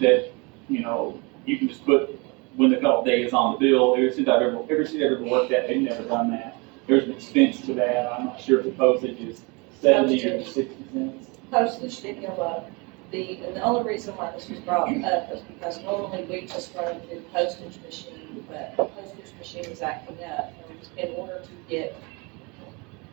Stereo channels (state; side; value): quieter; left; 28.8 dB